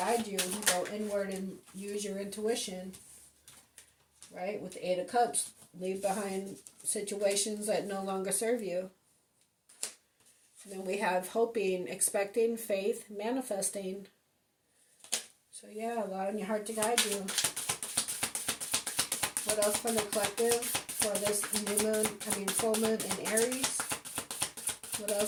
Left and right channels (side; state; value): both; identical; correlation 1.00